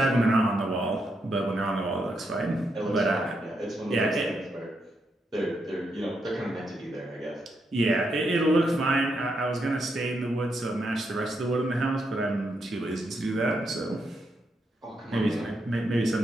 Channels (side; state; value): both; normal; correlation 0.81